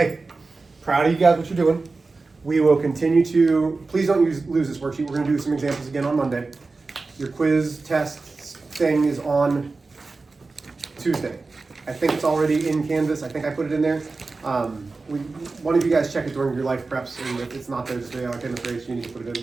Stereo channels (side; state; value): left; quieter; 3.8 dB